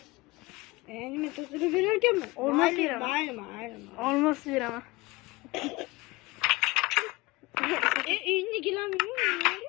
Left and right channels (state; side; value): quieter; right; 22.4 dB